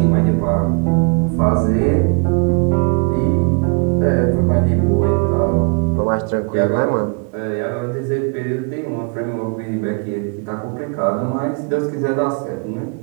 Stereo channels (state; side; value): quieter; left; 36.2 dB